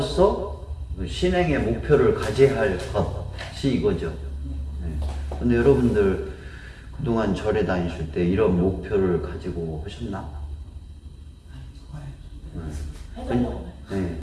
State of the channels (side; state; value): both; identical; correlation 1.00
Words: 신행의 목표를 가져야 할 것이 이거죠. 근데 여러분들 그동안 절에 다니실 때 이런 목표를 가지고 하셨나? 네,